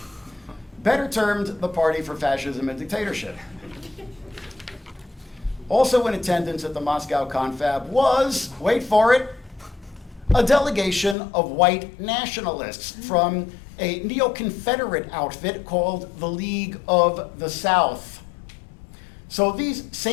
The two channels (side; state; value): right; drops out; at 11.2 s